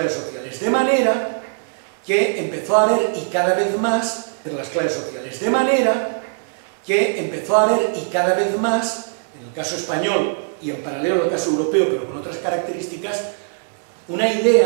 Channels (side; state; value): left; silent; digital silence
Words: sociales. De manera que empezó a haber, y cada vez más, entre las clases sociales, de manera que empezó a haber, y cada vez más, en el caso español y en paralelo al caso europeo, pero con otras características, una